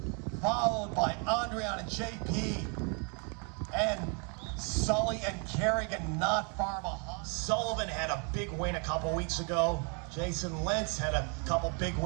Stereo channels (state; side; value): quieter; left; 36.8 dB